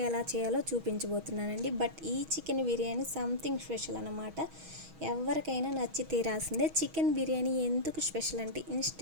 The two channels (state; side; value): late; left; 6.3 ms